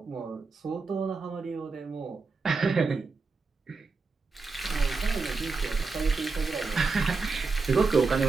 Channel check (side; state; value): left; quieter; 4.3 dB